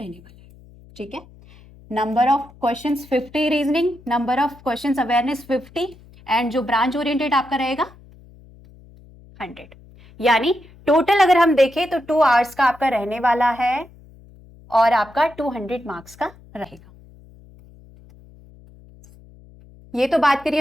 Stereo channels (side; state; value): left; noise; hum, 24 dB below the sound